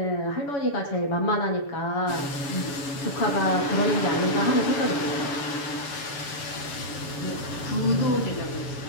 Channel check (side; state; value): right; late; 7.0 ms